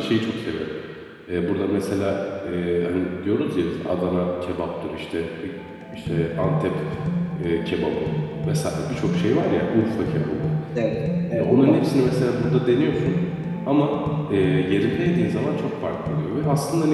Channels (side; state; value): both; identical; correlation 1.00